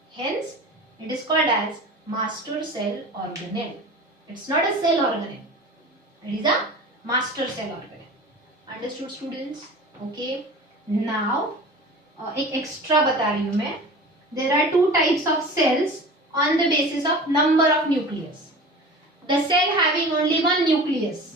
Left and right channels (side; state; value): both; normal; correlation 0.37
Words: hence it is called as master cell organelle. It's not a cell organelle, it is a master cell organelle. Understood students? Okay, now एक extra बता रही हूँ मैं. There are two types of cells on the basis of number of nucleus. The cell having only one nucleus